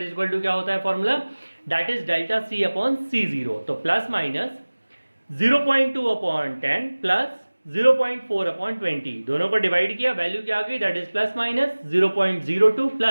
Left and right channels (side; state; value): both; inverted; correlation -1.00